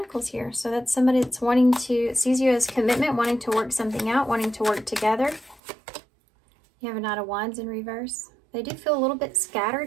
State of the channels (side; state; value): left; drops out; at 5.6 s